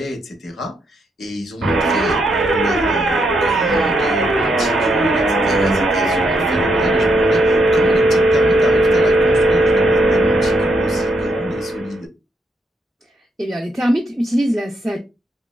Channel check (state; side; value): normal; both; correlation 0.79